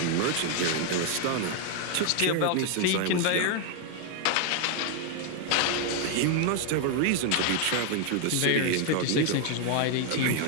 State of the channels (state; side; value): different; both; correlation 0.01